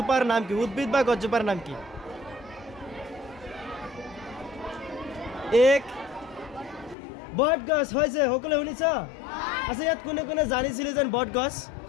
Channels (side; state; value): right; drops out; at 7.0 s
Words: নাম কি? উদ্ভিদ বা গছজোপাৰ নাম কি? এক বট গছ হৈছে। সকলোৱে শুনিছ? আচ্ছা, ইয়াত কোনে কোনে জানিছিলে যেন বট গছ?